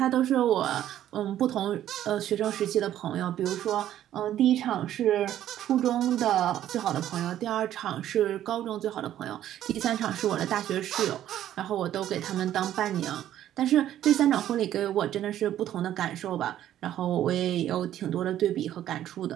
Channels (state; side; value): quieter; left; 11.9 dB